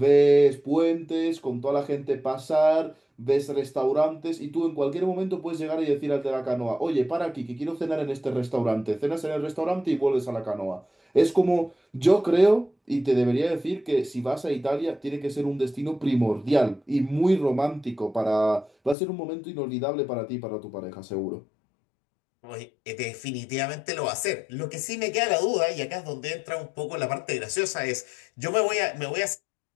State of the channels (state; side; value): drops out; right; at 18.9 s